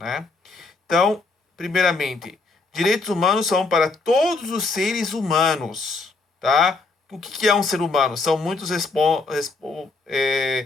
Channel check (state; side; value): quieter; right; 3.8 dB